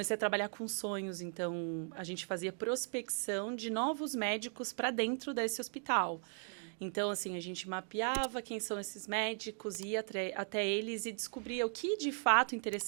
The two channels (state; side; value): silent; left; 53 dB below the other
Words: a trabalhar com sonhos, então a gente fazia prospecção de novos médicos para dentro desse hospital. Sim. Então, assim, a gente mapeava quem são esses médicos, ia até eles e descobria o que de fato